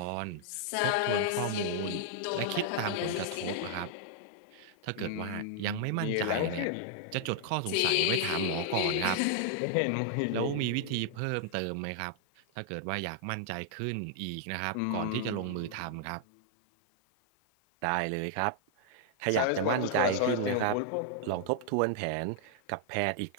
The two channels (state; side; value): different; both; correlation -0.01